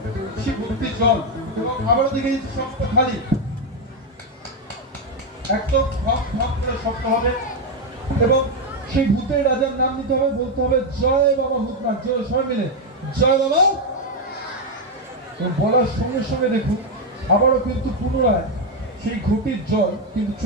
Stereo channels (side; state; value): both; normal; correlation 0.04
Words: ভর্তি জল এবং আবারও দেখে দিচ্ছি শক্ত খালি, একদম ধপ ধপ করে শক্ত হবে এবং সেই ভূতের রাজার নাম নিতে হবে। বলতে হবে জয় বাবা ভূতনাথ। জয় সবাই মিলে জয় বাবা। বলার সঙ্গে সঙ্গে দেখুন আবারও কিন্তু পুনরায় সেই ঘটির জল কিন্তু